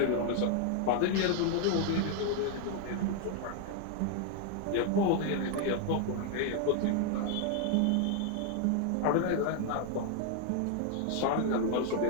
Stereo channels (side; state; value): both; different; correlation 0.00